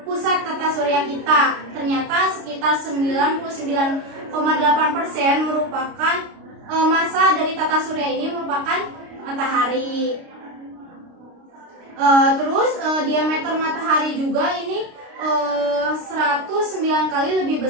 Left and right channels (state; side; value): late; left; 29 ms